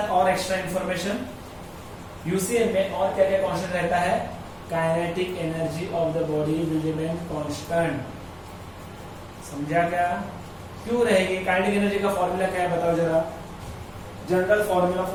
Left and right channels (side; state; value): both; identical; correlation 1.00